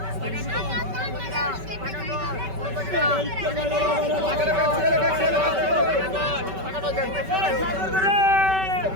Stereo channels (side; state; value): left; late; 5.2 ms